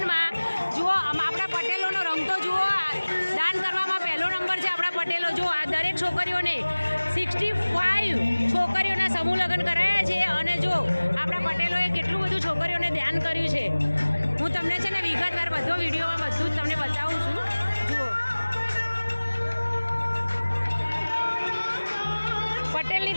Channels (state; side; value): inverted; both; correlation -1.00